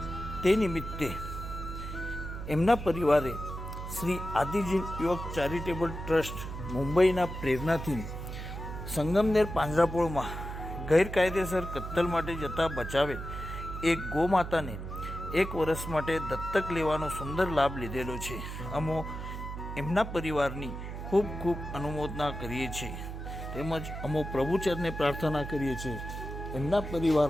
તે નિમિત્તે એમના પરિવારે શ્રી આદિજી યુવક ચેરિટેબલ ટ્રસ્ટ મુંબઈના પ્રેરણાથી સંગમનેર પાંજરાપોળમાં ગેરકાયદેસર કત્તલ માટે જતા બચાવે એક ગોમાતાને 1 વર્ષ માટે દત્તક લેવાનો સુંદર લાભ લીધેલો છે. અમો એમના પરિવારની ખૂબ ખૂબ અનુમોદના કરીએ છીએ, તેમજ અમો પ્રભુચરને પ્રાર્થના કરીએ છીએ એમના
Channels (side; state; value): right; noise; hum, 7 dB below the sound